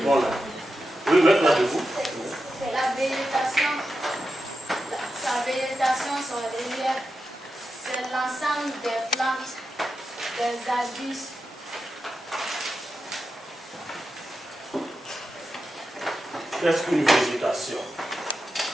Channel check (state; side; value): normal; both; correlation 0.90